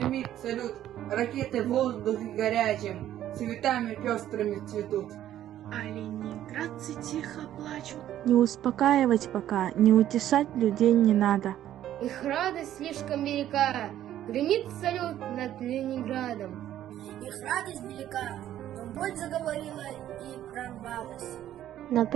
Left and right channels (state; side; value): quieter; left; 12.0 dB